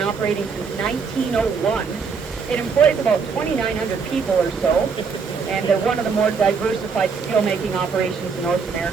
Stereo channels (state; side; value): quieter; left; 5.5 dB